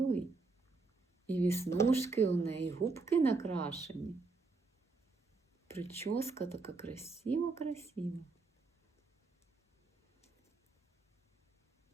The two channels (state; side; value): quieter; left; 3.9 dB